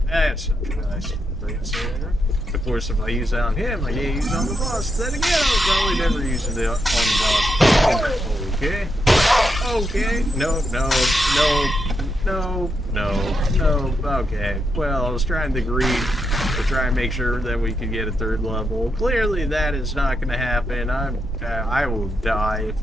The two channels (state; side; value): normal; both; correlation 0.83